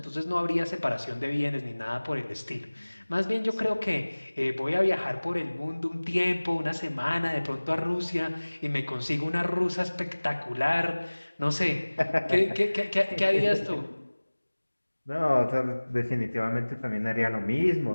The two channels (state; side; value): inverted; both; correlation -1.00